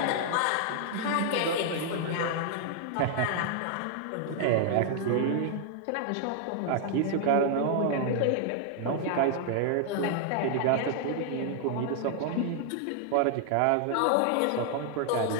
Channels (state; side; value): different; both; correlation 0.00